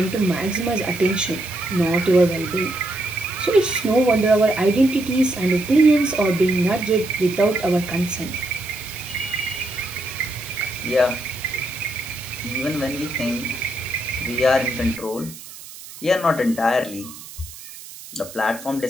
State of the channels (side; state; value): right; noise; hiss, 15 dB below the sound